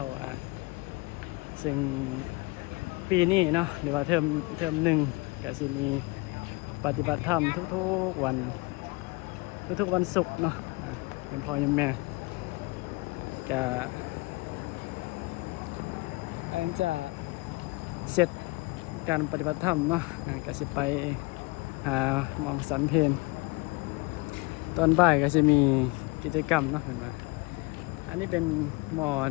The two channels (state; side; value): quieter; right; 25.3 dB